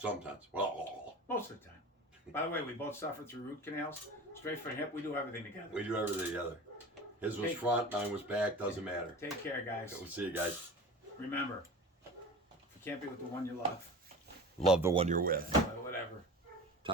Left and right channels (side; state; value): both; normal; correlation 0.35